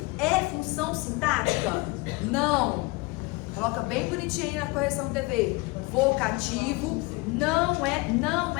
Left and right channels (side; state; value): right; quieter; 25.0 dB